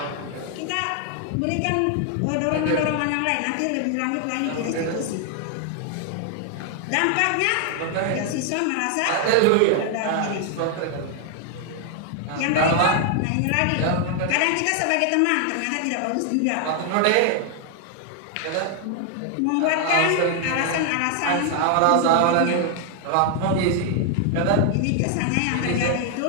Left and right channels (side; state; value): both; different; correlation 0.00